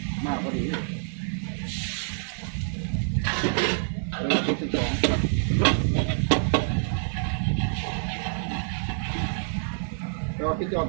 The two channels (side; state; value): left; silent; digital silence